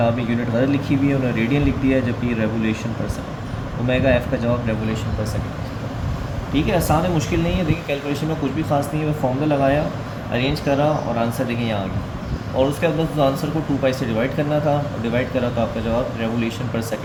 में यूनिट गलत लिखी हुई है, उन्होंने रेडियन लिख दिया है, जबकि रेवोल्यूशन पर सेकंड। ओमेगा एफ़ का जवाब रेवोल्यूशन पर सेकंड। ठीक है, आसान है, मुश्किल नहीं है। देखिए कैलकुलेशन में कुछ भी खास नहीं है, मैं फॉर्मूला लगाया, अरेंज करा और आंसर देखिए यहाँ आ गया। और उसके बाद उस आंसर को 2 पाई से डिवाइड करना था, डिवाइड करा तो आपका जवाब रेवोल्यूशन पर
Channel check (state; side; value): identical; both; correlation 1.00